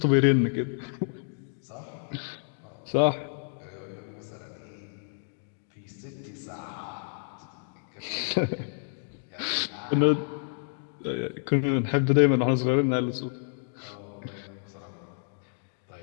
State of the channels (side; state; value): right; silent; digital silence